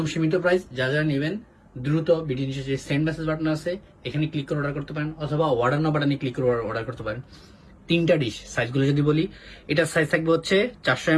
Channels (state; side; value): identical; both; correlation 1.00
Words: সীমিত প্রাইস। যা যা নেবেন দ্রুত ভিডিও নিচে যে সেন্ড মেসেজ বাটন আছে এখানে ক্লিক করে অর্ডার করতে পারেন, অথবা অর্ডার নাও বাটনে ক্লিক করে অর্ডার করতে পারেন। 3টা ডিশ সাইজগুলো যদি বলি, এটার সাইজ থাকবে হচ্ছে 400